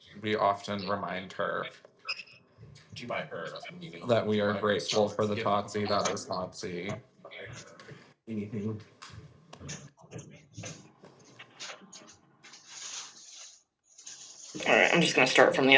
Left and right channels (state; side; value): identical; both; correlation 1.00